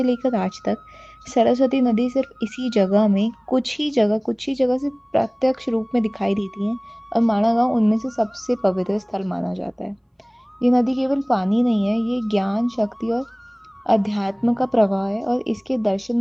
लेकर आज तक सरस्वती नदी सिर्फ इसी जगह में कुछ ही जगह से प्रत्यक्ष रूप में दिखाई देती हैं और माणा गाँव उनमें से सबसे पवित्र स्थल माना जाता है। ये नदी केवल पानी नहीं है, ये ज्ञान, शक्ति और अध्यात्म का प्रवाह है और इसके दर्शन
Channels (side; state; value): both; identical; correlation 1.00